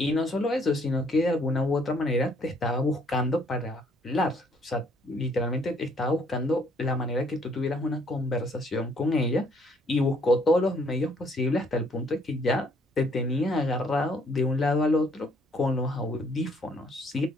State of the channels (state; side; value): normal; both; correlation 0.65